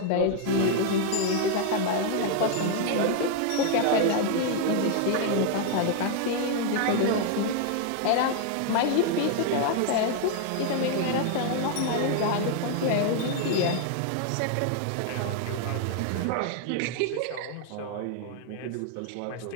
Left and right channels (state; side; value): different; both; correlation 0.00